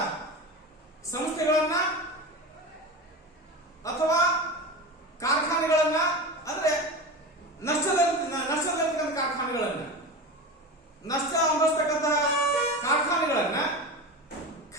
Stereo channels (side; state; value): both; normal; correlation 0.27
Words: ಸಂಸ್ಥೆಗಳನ್ನ ಅಥವಾ ಕಾರ್ಖಾನೆಗಳನ್ನ, ಅಂದ್ರೆ ನಷ್ಟದಲ್ಲಿರ್ತಕ್ಕಂಥ ಕಾರ್ಖಾನೆಗಳನ್ನ, ನಷ್ಟ ಅನುಭವಿಸ್ತಕ್ಕಂತಹ ಕಾರ್ಖಾನೆಗಳನ್ನ